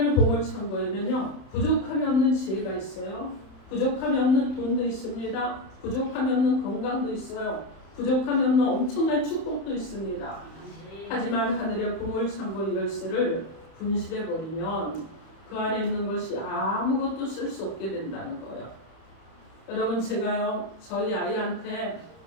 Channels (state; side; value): late; right; 31 ms